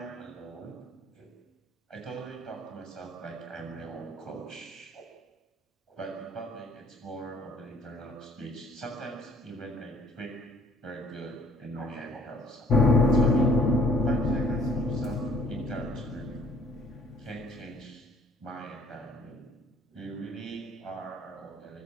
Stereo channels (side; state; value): both; normal; correlation 0.58